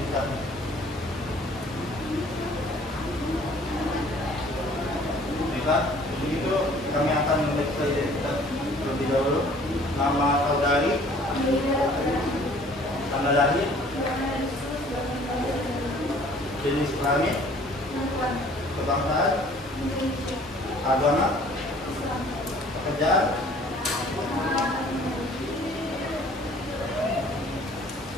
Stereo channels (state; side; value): normal; both; correlation 0.54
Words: Baiklah, untuk itu kami akan memeriksa identitas terlebih dahulu. Nama saudari, tanggal lahir, jenis kelamin, kebangsaan, agama, pekerjaan.